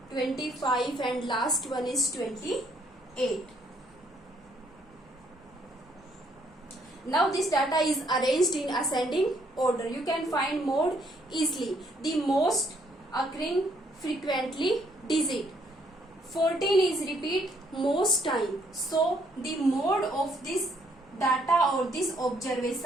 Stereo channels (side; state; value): both; normal; correlation 0.68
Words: 25 and last one is 28. Now this data is arranged in ascending order. You can find mode easily. The most occurring frequently digit. 14 is repeat most time. So the mode of this data or this